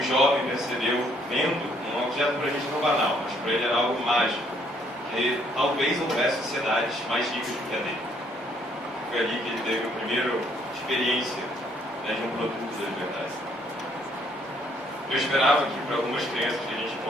jovem percebeu, vendo um objeto para a gente não banal, mas para ele era algo mágico, que talvez houvesse sociedades mais ricas do que a dele. Foi ali que ele teve a primeira experiência de um produto da liberdade. Eu esperava que para algumas crianças que a gente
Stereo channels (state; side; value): normal; both; correlation 0.66